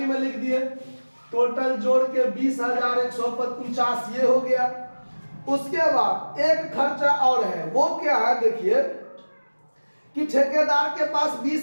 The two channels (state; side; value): inverted; both; correlation -1.00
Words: लिख दिए। टोटल जोड़ के 20,149 ये हो गया। उसके बाद एक खर्चा और है, वो क्या है देखिए कि ठेकेदार के पास